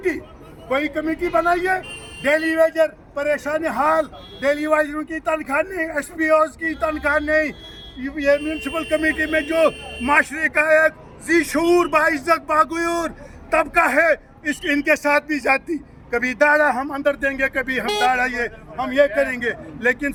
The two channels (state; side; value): identical; both; correlation 1.00